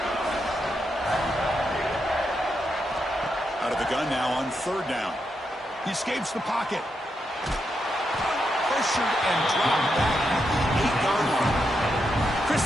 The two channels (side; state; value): both; normal; correlation 0.83